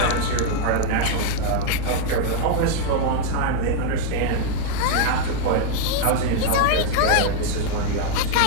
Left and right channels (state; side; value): different; both; correlation 0.00